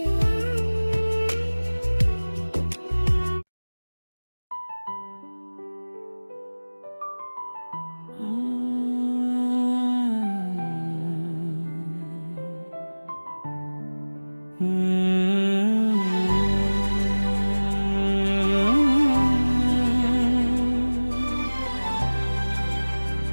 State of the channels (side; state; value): both; inverted; correlation -1.00